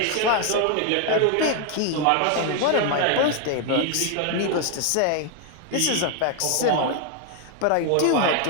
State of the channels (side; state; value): both; different; correlation 0.01